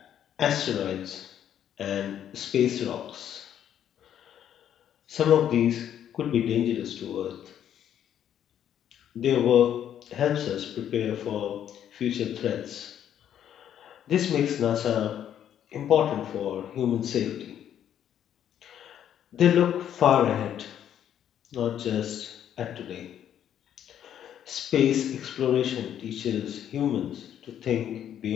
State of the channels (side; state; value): right; quieter; 10.0 dB